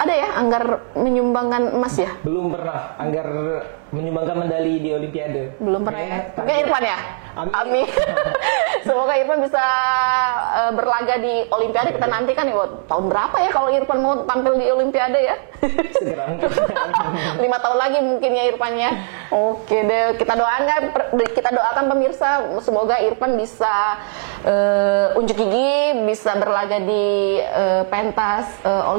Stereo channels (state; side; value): silent; left; digital silence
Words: ya Anggar menyumbangkan emas ya? Belum pernah Anggar menyumbangkan medali di Olimpiade. Belum pernah. Mungkin Irfan ya? Amin. Semoga Irfan bisa berlaga di Olimpiade. Kita nantikan ya, tahun berapa ya kalau Irfan mau tampil di Olimpiade ya? Segera mungkin. 5 tahun lagi mungkin ya Irfan ya. Oke deh, kita doakan pemirsa, semoga Irfan bisa unjuk gigi, bisa berlaga di pentas